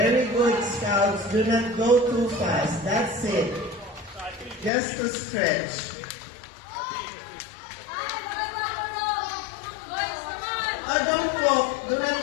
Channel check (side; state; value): right; drops out; at 4.7 s